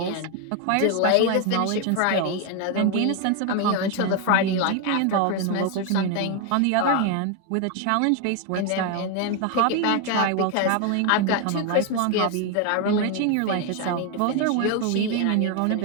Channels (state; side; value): different; both; correlation 0.01